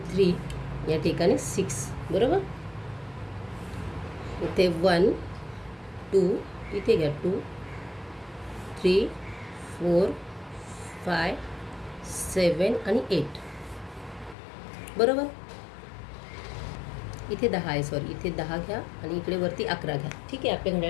3, या ठिकाणी 6, बरोबर. इथे 1, 2, इथे घ्या 2, 3, 4, 5, 7 आणि 8, बरोबर. इथे 10 आहे, सॉरी इथे 10 घ्या आणि इकडे वरती 11 घ्या, ठीक आहे. आपले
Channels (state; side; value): drops out; right; at 14.4 s